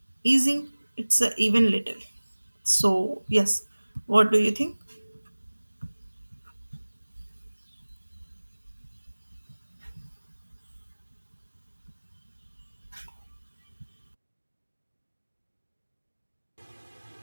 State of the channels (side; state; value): both; inverted; correlation -1.00